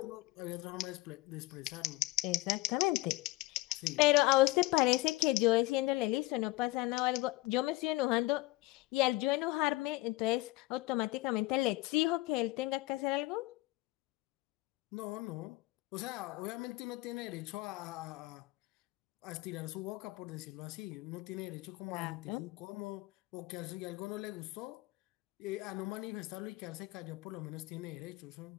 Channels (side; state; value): right; quieter; 19.8 dB